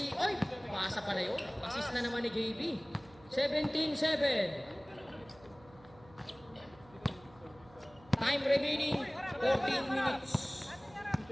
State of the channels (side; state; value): right; noise; hum, 24 dB below the sound